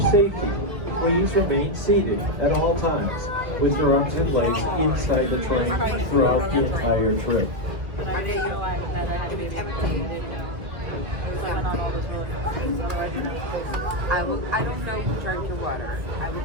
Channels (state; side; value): late; left; 1.9 ms